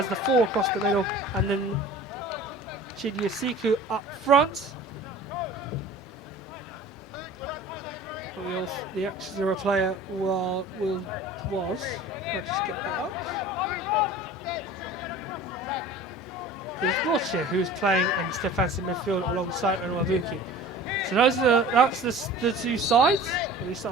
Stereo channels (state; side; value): normal; both; correlation 0.42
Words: the four across the middle, and then Chidiasiku up front. The extra player was. I'll just get that up. There's Wiltshire, who's playing in defensive midfield alongside Nwabuki. So that's the two sides. We